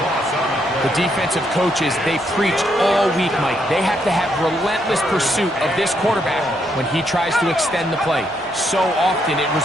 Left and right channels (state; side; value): normal; both; correlation 0.76